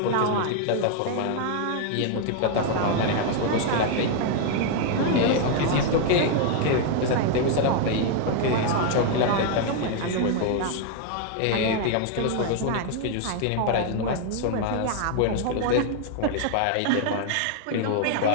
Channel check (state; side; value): different; both; correlation 0.00